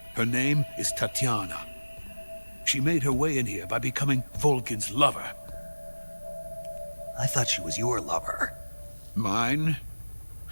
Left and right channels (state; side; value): inverted; both; correlation -1.00